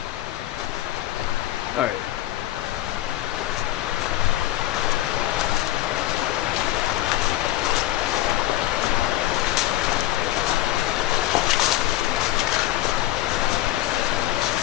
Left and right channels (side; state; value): right; quieter; 15.1 dB